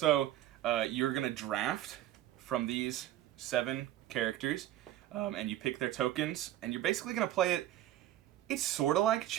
you're going to draft from these 7 characters, and you pick their tokens, and you're basically going to play it. It's sort of like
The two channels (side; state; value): left; quieter; 13.3 dB